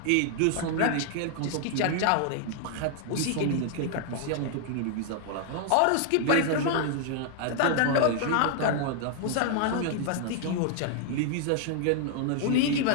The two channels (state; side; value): different; both; correlation 0.00